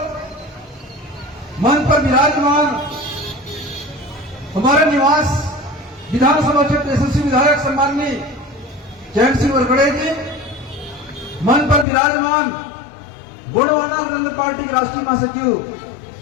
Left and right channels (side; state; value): right; drops out; at 11.9 s